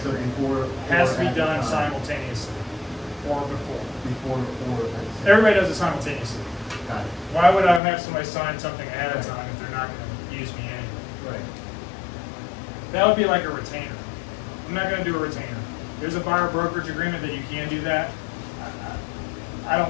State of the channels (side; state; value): right; drops out; at 7.8 s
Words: So agreement. before. Has to or be at the done time? simultaneously or before. Before or at the same. Everybody does it simultaneously. Got it. Why would I have somebody sign something ahead of time if they're not going to use me anyway? Right. That would be like a retainer. I'm not going to do a retainer. There's a buyer brokerage agreement that you can do that. I